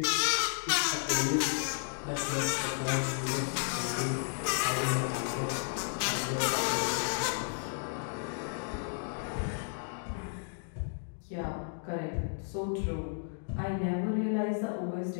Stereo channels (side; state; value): right; silent; digital silence